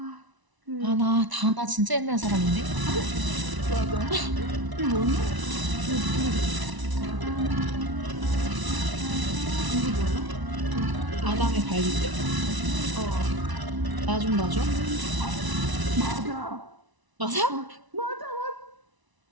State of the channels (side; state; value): left; late; 1.0 ms